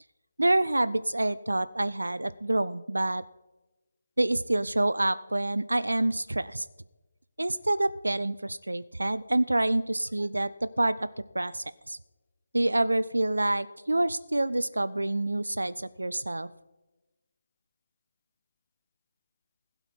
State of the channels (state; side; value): inverted; both; correlation -0.99